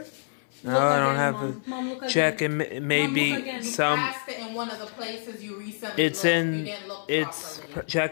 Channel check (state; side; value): silent; right; 60 dB below the other